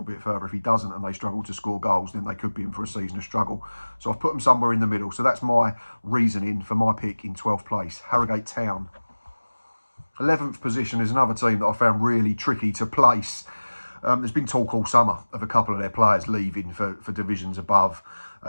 bit further. If he doesn't and they struggle to score goals, then they could be in for a season of struggle. So I've put them somewhere in the middle. So that's my reasoning for my pick in 12th place, Harrogate Town. 11th position is another team that I found really tricky to place. There's been talk all summer of a couple of their players leaving for divisions above.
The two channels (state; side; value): inverted; both; correlation -1.00